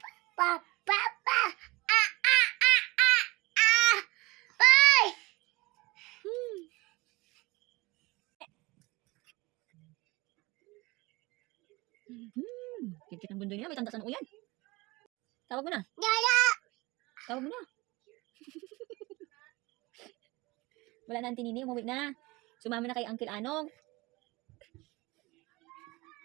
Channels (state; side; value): quieter; left; 22.7 dB